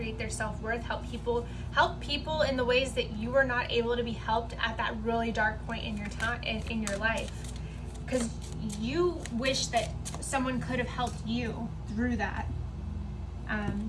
their self-worth, help people in the ways that you were not able to be helped at that really dark point in your time in your life, because you wish that someone could have helped you through that.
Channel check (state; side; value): identical; both; correlation 1.00